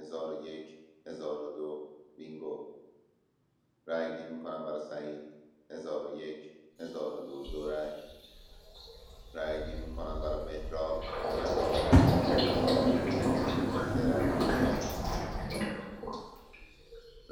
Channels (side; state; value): both; identical; correlation 1.00